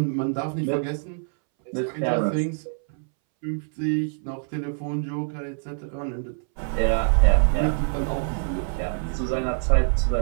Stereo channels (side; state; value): left; silent; 61 dB below the other